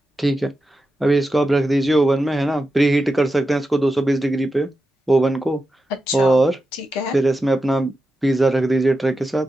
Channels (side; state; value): both; normal; correlation 0.90